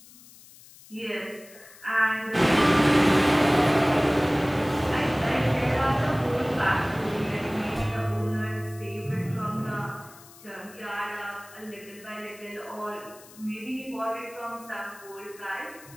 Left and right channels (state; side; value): noise; left; hiss, 22 dB below the sound